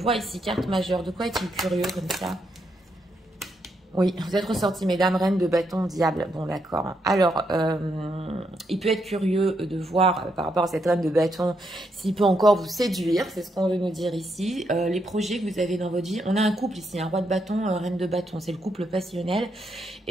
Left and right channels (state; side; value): normal; both; correlation 0.79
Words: ici, carte majeure. De quoi est-il curieux comme ça? Oui, vous êtes ressorti, mesdames, reine de bâton, diable. Bon, d'accord. Alors, il peut être curieux de voir par rapport à cette reine de bâton s'il peut encore vous séduire. C'est ce qu'on veut nous dire ici. Les projets que vous avez dans votre vie. On a un couple ici, un roi de bâton, reine de bâton. C'est le couple passionnel.